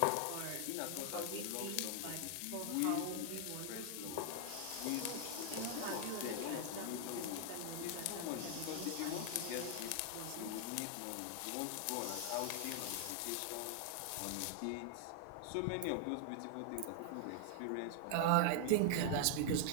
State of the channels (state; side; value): different; both; correlation 0.00